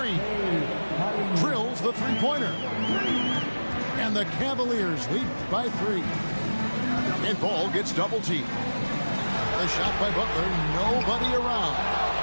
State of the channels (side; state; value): both; inverted; correlation -1.00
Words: Drills the three-pointer. And the Cavaliers lead by 3. And Ball gets double-teamed. The shot by Butler, nobody around.